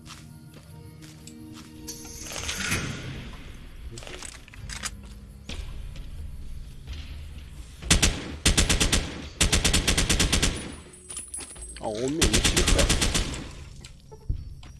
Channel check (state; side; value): identical; both; correlation 1.00